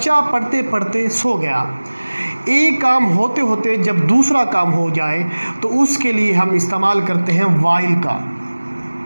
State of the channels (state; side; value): inverted; both; correlation -1.00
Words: पढ़ते पढ़ते सो गया, एक काम होते होते जब दूसरा काम हो जाए तो उसके लिए हम इस्तेमाल करते हैं वाइल का,